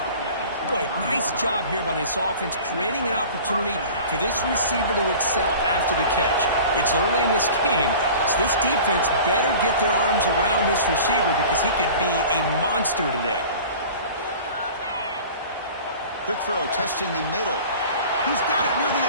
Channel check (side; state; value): both; inverted; correlation -0.42